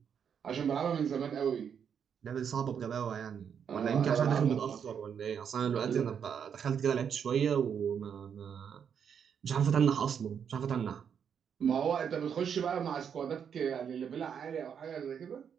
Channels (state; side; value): quieter; left; 7.6 dB